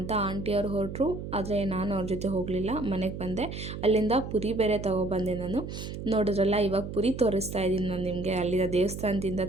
ಆಂಟಿಯವರು ಹೊರಟರು. ಆದರೆ ನಾನು ಅವ್ರ ಜೊತೆ ಹೋಗಲಿಲ್ಲ, ಮನೆಗೆ ಬಂದೆ. ಅಲ್ಲಿಂದ ಪುರಿ ಬೇರೆ ತೊಗೊಬಂದೆ ನಾನು. ನೋಡಿದ್ರಲ್ಲ, ಇವಾಗ ಪುರಿ ತೋರಿಸ್ತಾ ಇದ್ದೀನಿ ನಾನು ನಿಮಗೆ. ಅಲ್ಲಿನ ದೇವಸ್ಥಾನದಿಂದ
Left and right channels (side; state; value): right; noise; hum, 8 dB below the sound